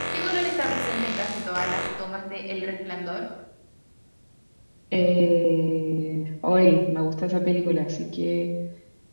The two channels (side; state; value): both; inverted; correlation -1.00